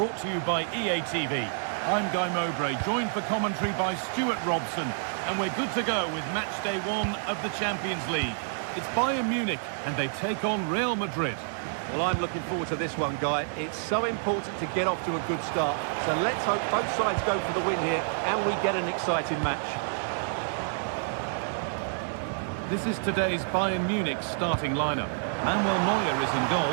to you by EA TV. I'm Guy Mowbray, joined for commentary by Stuart Robson, and we're good to go with match day 1 of the Champions League. It's Bayern Munich and they take on Real Madrid. Well, I'm looking forward to this one, Guy. It's so important to get off to a good start. So let's hope both sides go for the win here and we get an exciting match. This is today's Bayern Munich starting lineup. Manuel Neuer is in goal.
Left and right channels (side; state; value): left; silent; digital silence